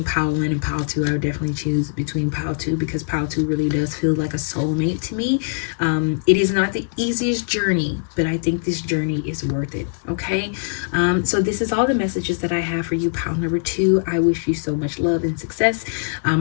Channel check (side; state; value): right; silent; digital silence